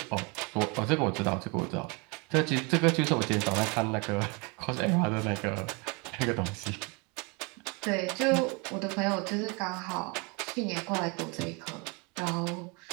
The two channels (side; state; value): left; quieter; 30.5 dB